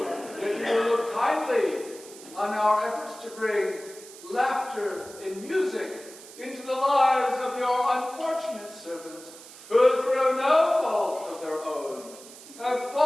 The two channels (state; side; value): noise; right; hiss, 18 dB below the sound